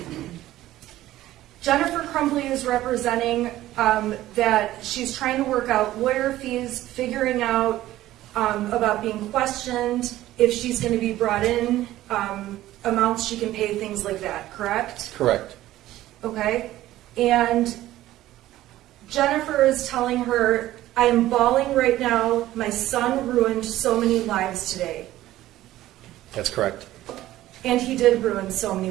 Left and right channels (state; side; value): quieter; left; 14.9 dB